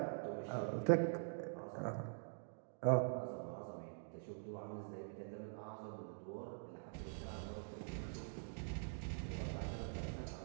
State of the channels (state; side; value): silent; left; digital silence